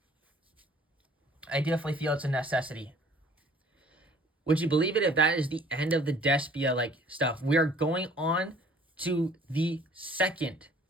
I definitely feel it's a necessity. Would you believe it if that is the end of the Despia like stuff? We are going on to the second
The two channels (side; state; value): both; normal; correlation 0.53